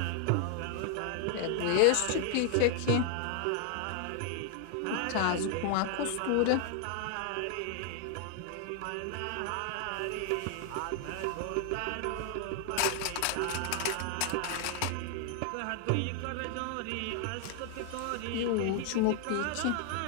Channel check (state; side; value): different; both; correlation 0.00